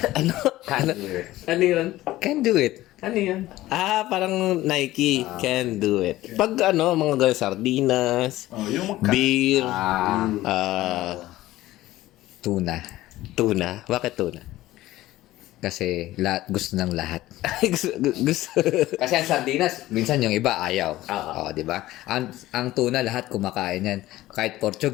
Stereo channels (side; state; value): right; quieter; 16.2 dB